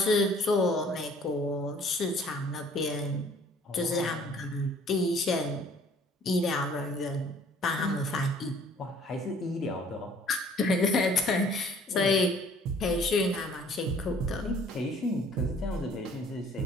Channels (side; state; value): both; normal; correlation 0.56